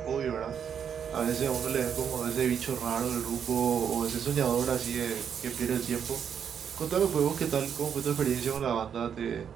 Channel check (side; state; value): left; quieter; 7.8 dB